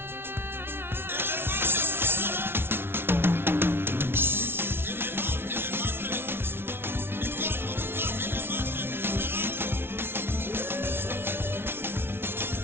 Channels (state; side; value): late; left; 0.11 ms